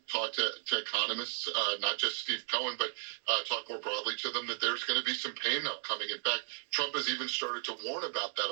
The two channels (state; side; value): silent; left; 55 dB below the other